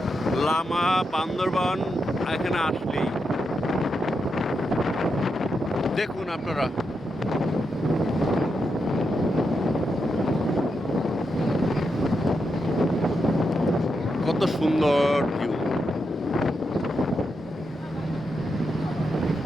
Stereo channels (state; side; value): normal; both; correlation 0.85